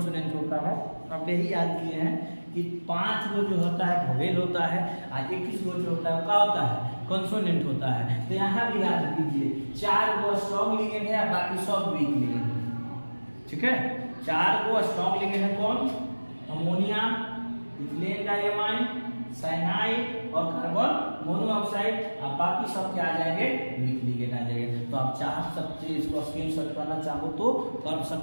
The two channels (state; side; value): inverted; both; correlation -1.00